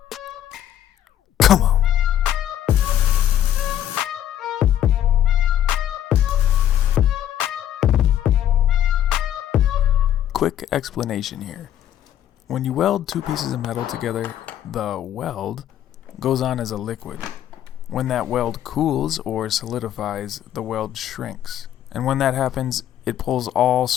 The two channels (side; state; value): right; quieter; 11.3 dB